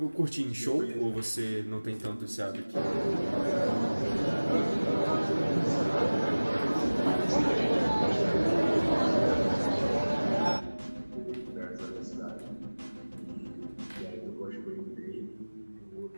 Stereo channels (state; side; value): inverted; both; correlation -1.00